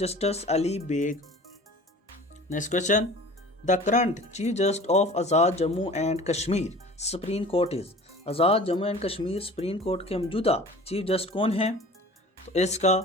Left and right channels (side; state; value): both; normal; correlation 0.43